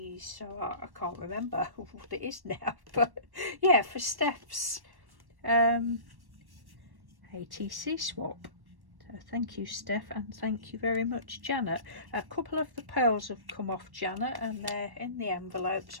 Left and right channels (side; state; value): left; late; 1.1 ms